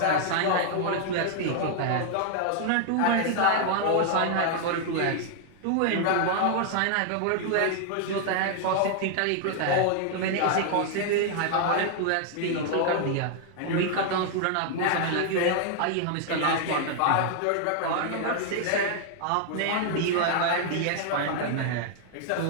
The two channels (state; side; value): different; both; correlation 0.00